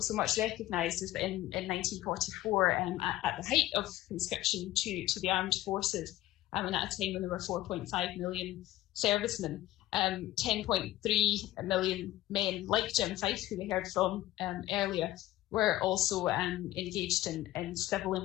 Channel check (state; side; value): quieter; right; 15.5 dB